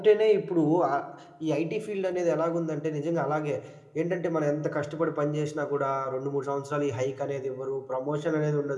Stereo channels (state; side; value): identical; both; correlation 1.00